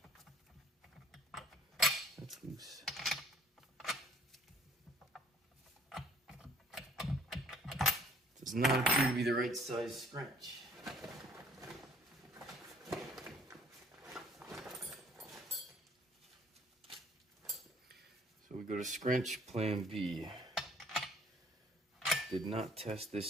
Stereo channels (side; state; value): both; normal; correlation 0.59